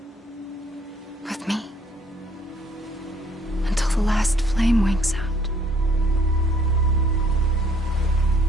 With me. Until the last flame winks out.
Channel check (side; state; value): both; normal; correlation 0.62